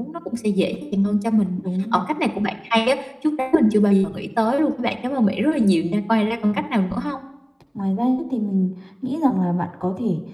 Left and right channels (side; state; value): both; identical; correlation 1.00